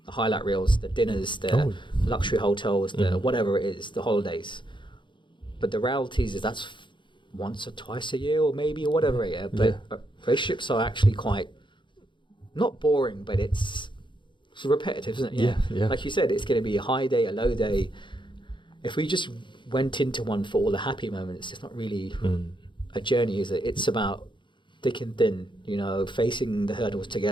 highlight reels, the dinners, the luxury hotels, the whatever it is, the holidays. But the reality is that's once or twice a year or maybe or whatever. But relationships are actually quite, not boring, but it's repetitive, isn't it? Yeah. Like you said, it's going to be a high day, a low day. If we just went into one for all the happy moments, it's not really a journey, is it? It's about thick and thin, facing the hurdles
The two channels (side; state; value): right; late; 0.23 ms